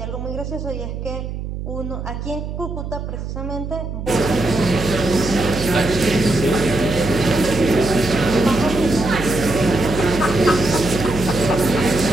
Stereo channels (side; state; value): right; noise; hum, 7 dB below the sound